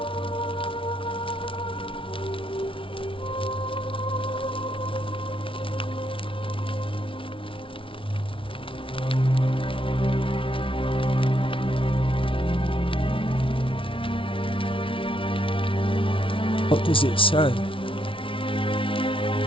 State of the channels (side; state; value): right; late; 0.25 ms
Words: What does it say?